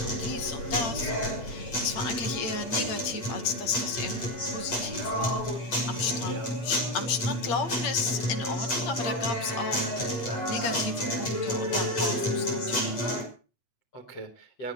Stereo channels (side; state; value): right; late; 8.3 ms